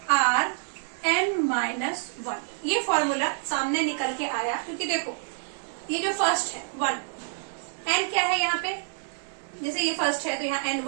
n-1। ये फॉर्मूला सामने निकल के आया, क्योंकि देखो ये जो फर्स्ट है 1, n क्या है यहाँ पे? जैसे ये फर्स्ट है तो यहाँ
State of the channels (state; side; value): silent; left; digital silence